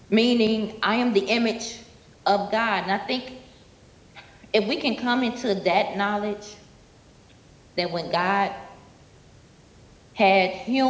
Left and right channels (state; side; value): identical; both; correlation 1.00